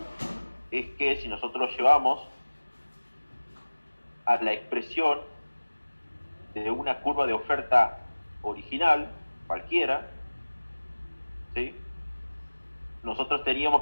es que si nosotros llevamos a la expresión de una curva de oferta original, cualquiera, ¿sí? Nosotros teníamos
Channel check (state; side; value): inverted; both; correlation -1.00